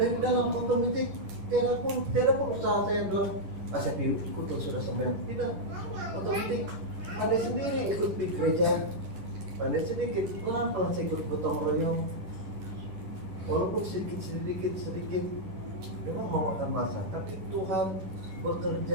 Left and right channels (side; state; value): left; late; 10 ms